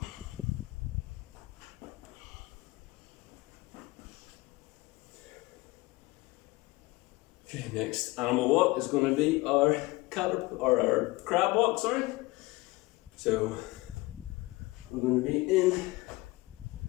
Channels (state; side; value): quieter; right; 21.6 dB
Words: Okay, next animal walk is going to be our crab walk, sorry. So we're going to be in